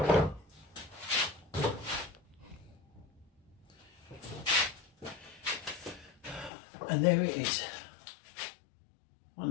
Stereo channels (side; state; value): right; drops out; at 6.5 s